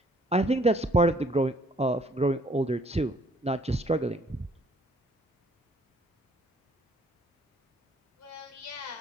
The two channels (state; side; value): normal; both; correlation 0.61